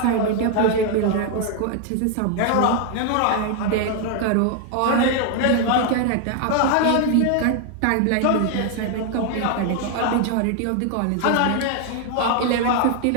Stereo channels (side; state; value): both; different; correlation 0.00